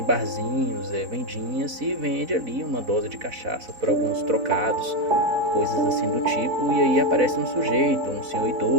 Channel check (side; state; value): left; late; 4.0 ms